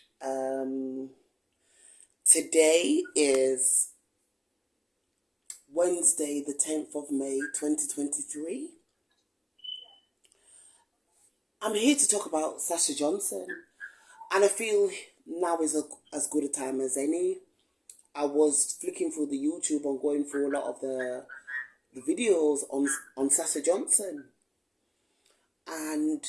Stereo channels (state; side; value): identical; both; correlation 1.00